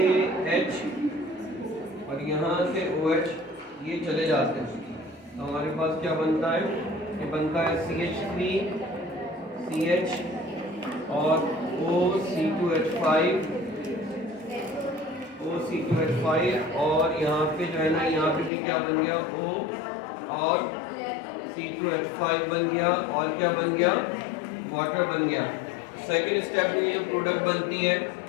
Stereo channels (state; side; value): drops out; right; at 18.5 s